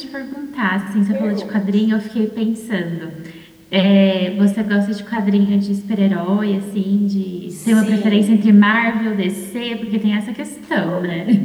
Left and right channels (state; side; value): identical; both; correlation 1.00